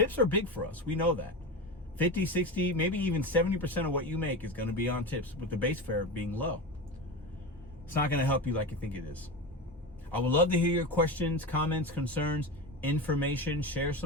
are big for us. We know that. 50, 60, maybe even 70% of what you make is going to be on tips, with the base fare being low. It's not going to help you like you think it is. I would love to hear your questions, comments, concerns, information. Share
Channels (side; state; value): both; normal; correlation 0.23